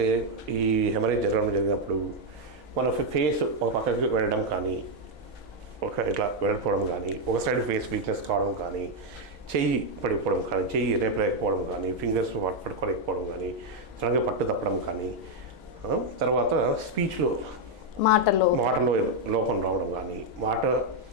ఈ హెమరేజ్ జరిగినప్పుడు మన ఫేస్ ఒక పక్కకి వెళ్ళడం కానీ, ఇట్లా వెళ్ళిపోవడం కానీ, ఒక సైడ్ ఫేస్ వీక్నెస్ కావడం కానీ, చెయ్యి పడిపోవడం కానీ, చెయ్యి రేపలేకపోవడం కానీ, ఫింగర్స్ పట్టుకోలేకపోవడం కానీ, సడన్గా పట్టు తప్పడం కానీ, తర్వాత స్పీచ్లో మాటలో లోపం రావడం కానీ, మాట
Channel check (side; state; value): both; normal; correlation 0.01